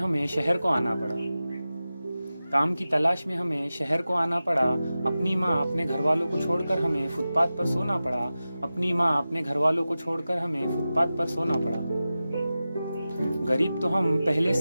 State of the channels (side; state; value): both; inverted; correlation -0.95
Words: शहर को आना पड़ा। काम की तलाश में हमें शहर को आना पड़ा। अपनी माँ अपने घर वालों को छोड़कर हमें फुटपाथ पर सोना पड़ा। अपनी माँ अपने घर वालों को छोड़कर हमें फुटपाथ पर सोना पड़ा। गरीब तो हम पहले